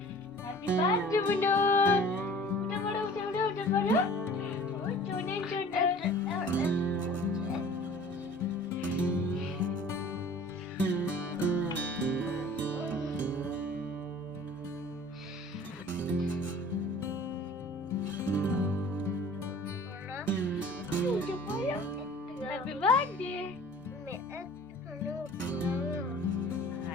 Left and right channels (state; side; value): normal; both; correlation 0.46